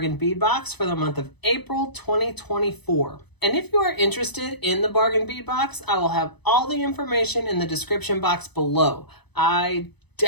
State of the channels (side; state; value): right; late; 0.99 ms